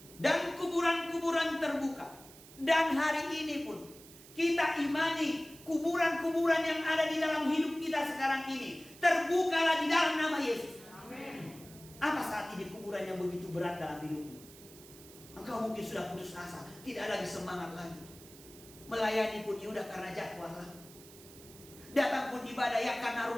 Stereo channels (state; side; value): noise; right; hiss, 20 dB below the sound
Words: Dan kuburan-kuburan terbuka. Dan hari ini pun kita imani kuburan-kuburan yang ada di dalam hidup kita sekarang ini terbukalah di dalam nama Yesus. Amin. Apa saat ini kuburan yang begitu berat dalam hidupmu? Engkau mungkin sudah putus asa, tidak lagi semangat lagi. Melayani pun ya udah karena jadwal lah. Datang pun ibadah ya karena